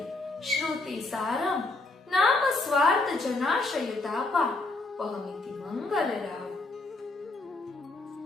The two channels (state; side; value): quieter; right; 3.2 dB